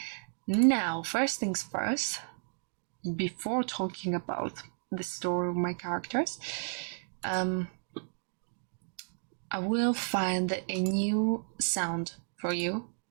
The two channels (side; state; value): left; silent; digital silence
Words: now, first things first, before talking about the story of my characters, I will find a new sound for you,